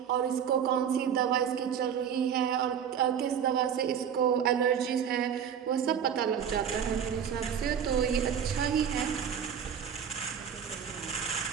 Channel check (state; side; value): quieter; left; 8.2 dB